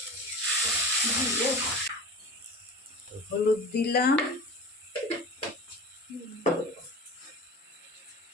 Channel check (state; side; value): normal; both; correlation 0.36